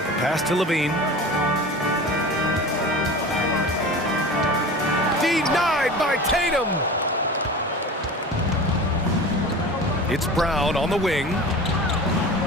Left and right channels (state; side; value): normal; both; correlation 0.35